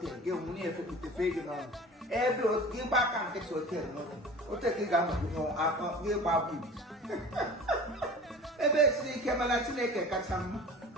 gị nwunye efepụtefe ego n'ọnụ ebe gị gba aka nkịtị hotel n'otu hotel gị ga-anọgide gị gba bụ ebe esiri ike mana Chineke kacha mma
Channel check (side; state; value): both; normal; correlation 0.39